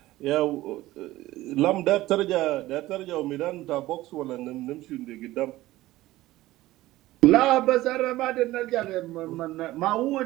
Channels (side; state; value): left; quieter; 16.9 dB